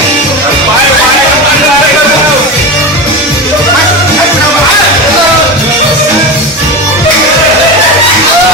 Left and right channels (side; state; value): both; normal; correlation 0.23